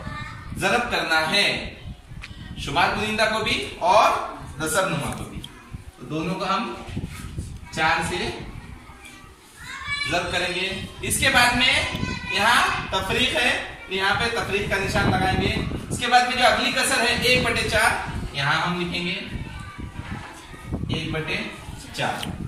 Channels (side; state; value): both; identical; correlation 1.00